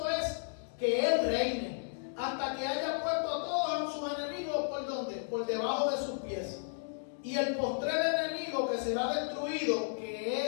es que Él reine hasta que haya puesto a todos sus enemigos ¿por dónde? Por debajo de sus pies. Y el postrer enemigo que será destruido, que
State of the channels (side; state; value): right; silent; digital silence